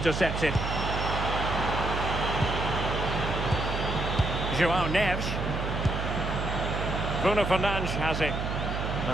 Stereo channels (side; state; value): right; noise; hum, 3 dB below the sound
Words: João Neves. Bruno Fernandes has it.